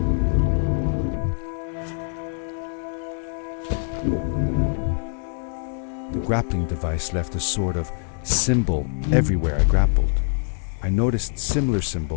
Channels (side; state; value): right; silent; 60 dB below the other